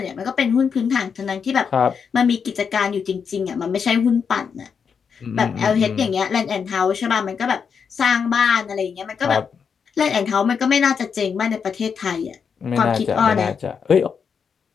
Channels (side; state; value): right; quieter; 6.4 dB